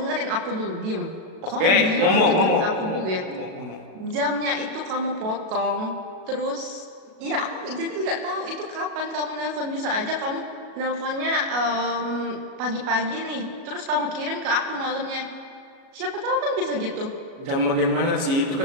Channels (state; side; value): late; left; 37 ms